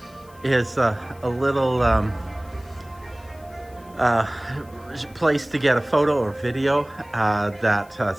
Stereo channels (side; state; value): left; noise; hiss, 27 dB below the sound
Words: is a little place to get a photo or video that